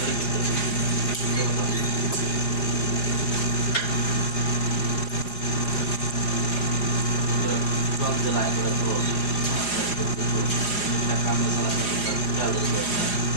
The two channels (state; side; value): late; right; 4.9 ms